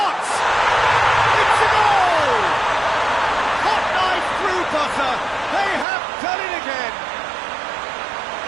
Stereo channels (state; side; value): drops out; left; at 5.9 s